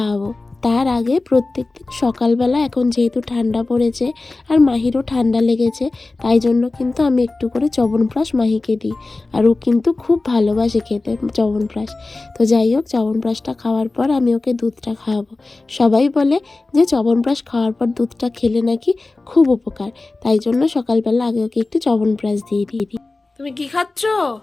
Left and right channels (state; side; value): quieter; right; 3.3 dB